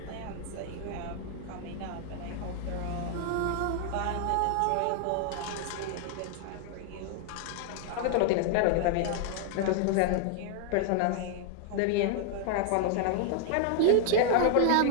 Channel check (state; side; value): different; both; correlation 0.00